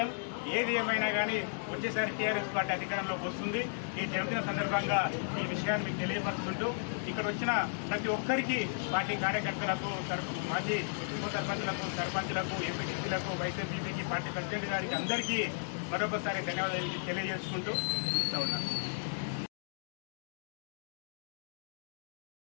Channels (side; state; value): right; silent; digital silence